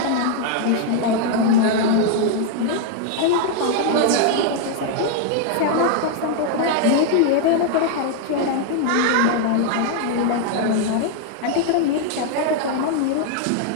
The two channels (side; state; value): both; different; correlation 0.00